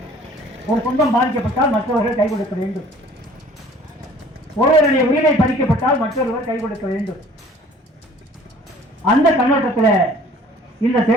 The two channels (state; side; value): normal; both; correlation 0.52